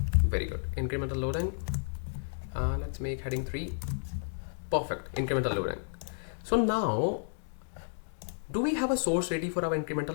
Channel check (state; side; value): silent; right; digital silence